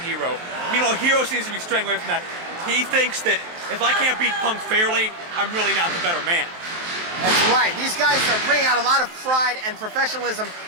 Hero. Meanwhile, Hero seems to be straying away from that. He thinks that if I can't beat Punk fairly, I'm really not the better man. That's right. These guys are bringing out a lot of pride and professionalism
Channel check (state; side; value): late; left; 23 ms